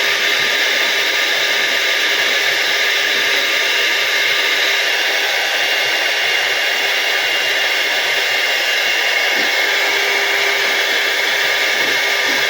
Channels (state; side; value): identical; both; correlation 1.00